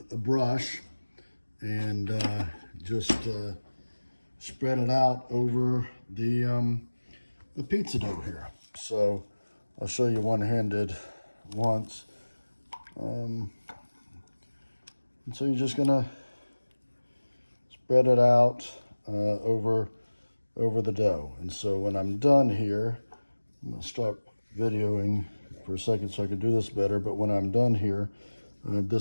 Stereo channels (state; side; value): inverted; both; correlation -1.00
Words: brush and just spread it out over the pizza dough here. So I'll show you one-handed once. And so you're just gonna spread it out over the dough. And so when I'm done here, I'm gonna stop videoing for a second so I can do this better. But when I'm done here,